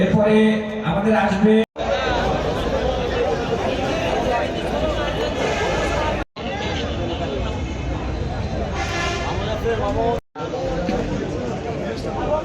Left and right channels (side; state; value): both; identical; correlation 1.00